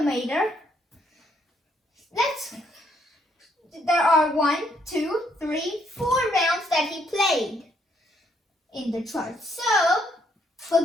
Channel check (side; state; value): both; normal; correlation 0.71